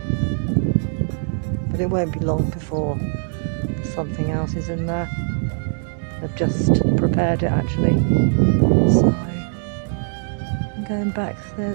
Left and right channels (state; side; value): silent; left; 63 dB below the other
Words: but it won't be long before something else is in there. I've just prepared it actually. So I'm going back,